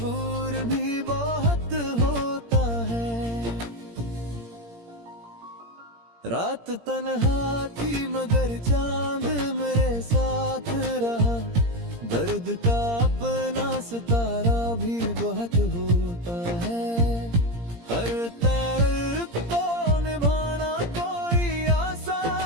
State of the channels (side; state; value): left; late; 17 ms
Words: भी बहुत होता है। रात तन्हा थी मगर चांद मेरे साथ रहा, दर्द का अपना सितारा भी बहुत होता है। हर ताल्लुक को निभाना कोई